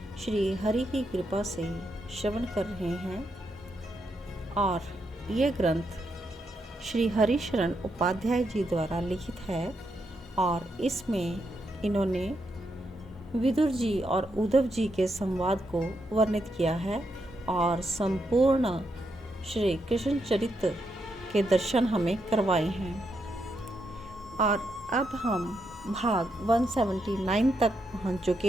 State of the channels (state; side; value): normal; both; correlation 0.81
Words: श्री हरि की कृपा से श्रवण कर रहे हैं और ये ग्रंथ श्री हरिशरण उपाध्याय जी द्वारा लिखित है और इसमें इन्होंने विदुर जी और उद्धव जी के संवाद को वर्णित किया है और संपूर्ण श्री कृष्ण चरित्र के दर्शन हमें करवाए हैं। और अब हम भाग 179 तक पहुंच